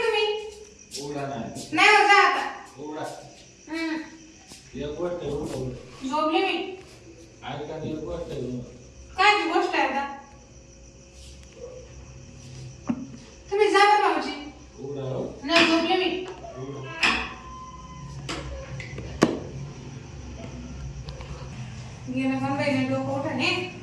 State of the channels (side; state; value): both; identical; correlation 1.00